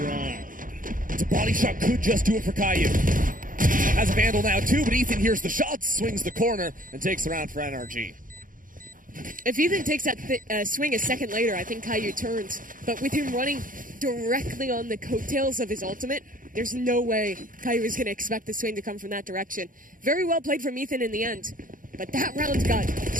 It's a body shot, could just do it for Caillou. Has a Vandal now too, but Ethan hears the shots, swings the corner, and takes the round for NRG. If Ethan takes that swing a second later, I think Caillou turns. But with him running directly on the coattails of his ultimate, there's no way Caillou is going to expect the swing to come from that direction. Very well played from Ethan in the end. But that round got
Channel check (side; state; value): left; late; 0.39 ms